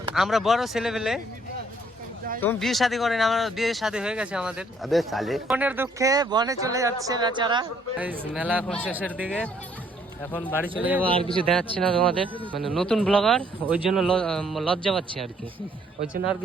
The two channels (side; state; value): both; normal; correlation 0.65